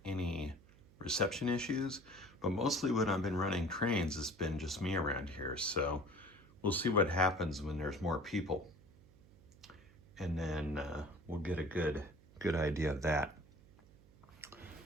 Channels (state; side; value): noise; right; hum, 25 dB below the sound